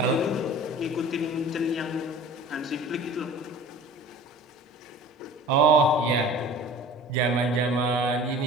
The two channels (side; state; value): both; normal; correlation 0.42